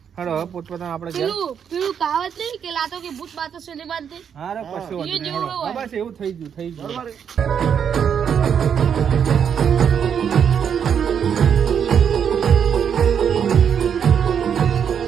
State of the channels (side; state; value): left; quieter; 7.8 dB